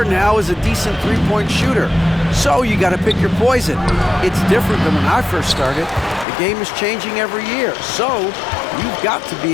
now is a decent three-point shooter. So you got to pick your poison. It's different than when I first started. The game is changing every year. So you've got to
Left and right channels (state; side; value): drops out; right; at 6.2 s